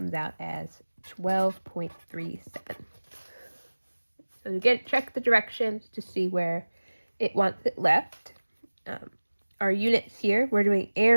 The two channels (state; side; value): inverted; both; correlation -1.00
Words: out as 12.37. So again, check the directions to see where it wants it left. Our units here, we're doing